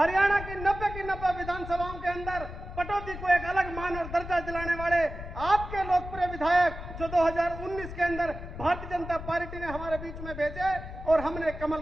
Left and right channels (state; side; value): noise; left; rumble, 10 dB below the sound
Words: की 90 विधानसभाओं के अंदर पटौदी को एक अलग मान और दर्जा दिलाने वाले आपके लोकप्रिय विधायक जो 2019 के अंदर भारतीय जनता पार्टी ने हमारे बीच में भेजे और हमने कमल